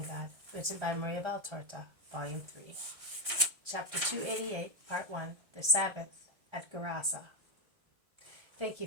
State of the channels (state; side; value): late; left; 1.6 ms